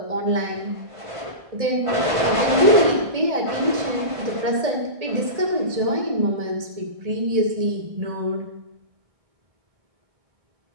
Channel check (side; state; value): left; late; 1.6 ms